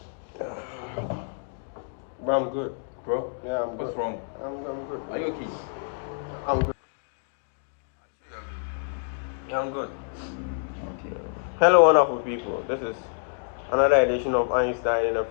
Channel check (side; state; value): right; silent; digital silence